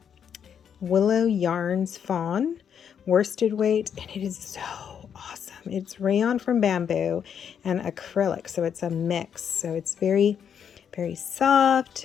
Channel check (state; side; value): quieter; right; 8.0 dB